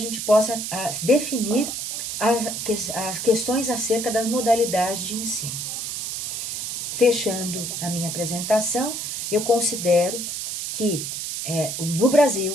possa definir as questões acerca das modalidades de ensino. Fechando a minha apresentação, eu considero que no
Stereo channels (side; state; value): right; noise; hiss, 4 dB below the sound